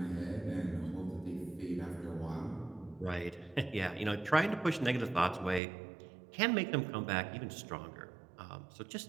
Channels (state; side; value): drops out; left; at 5.6 s